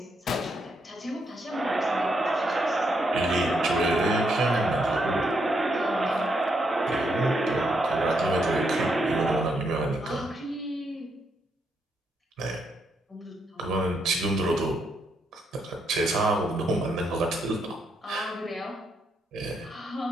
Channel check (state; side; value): normal; both; correlation 0.78